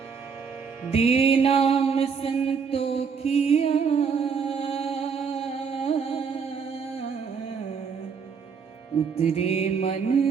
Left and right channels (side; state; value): left; quieter; 6.0 dB